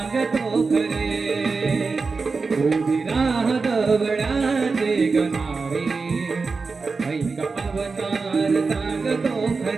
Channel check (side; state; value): left; quieter; 4.4 dB